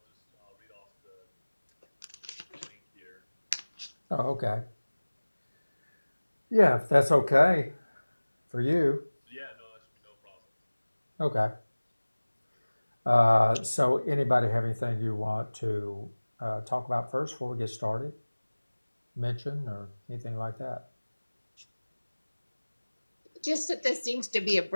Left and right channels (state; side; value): inverted; both; correlation -1.00